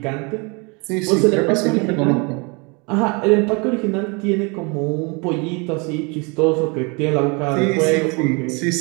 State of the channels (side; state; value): left; quieter; 30.6 dB